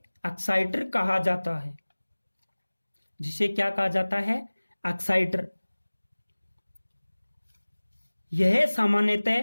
एक्साइटर कहा जाता है। जिसे क्या कहा जाता है? एक्साइटर। यह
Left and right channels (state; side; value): inverted; both; correlation -1.00